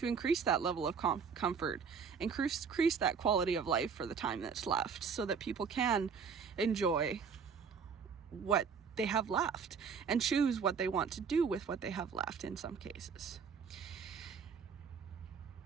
increase that level of comfort, increase that quality of life for the time that's left, so that people can enjoy what they have left and choose what they want to do with what they have left in some cases.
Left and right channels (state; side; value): quieter; left; 6.1 dB